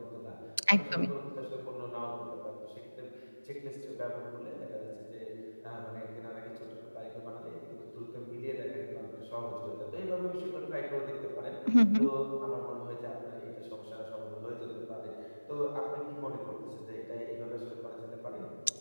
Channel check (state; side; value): inverted; both; correlation -1.00